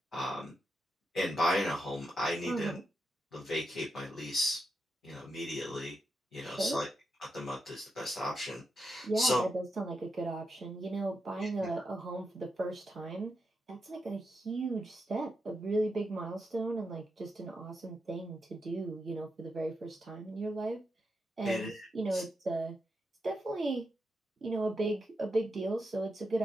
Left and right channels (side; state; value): both; normal; correlation 0.85